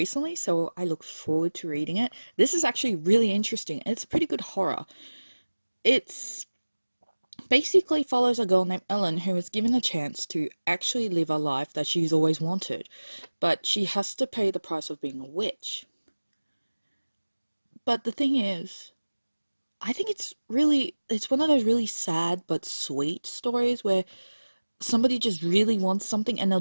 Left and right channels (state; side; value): inverted; both; correlation -1.00